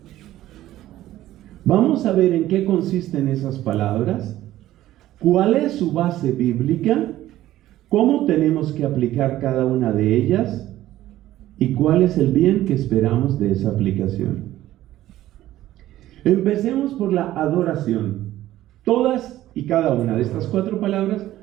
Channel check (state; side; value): quieter; left; 14.4 dB